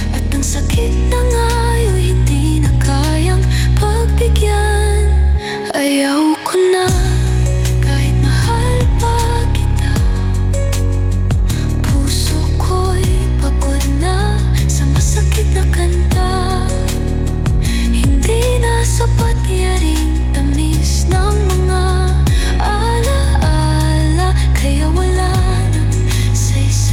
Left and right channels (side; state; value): both; identical; correlation 1.00